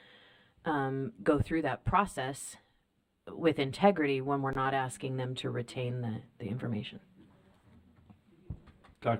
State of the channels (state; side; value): identical; both; correlation 1.00